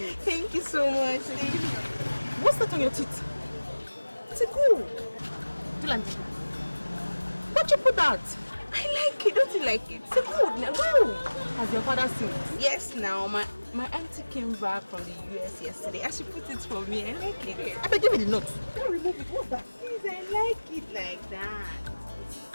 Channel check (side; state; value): both; inverted; correlation -1.00